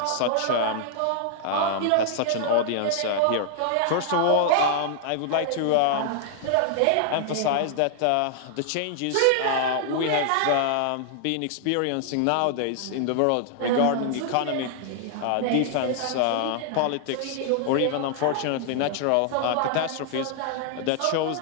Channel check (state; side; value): different; both; correlation -0.01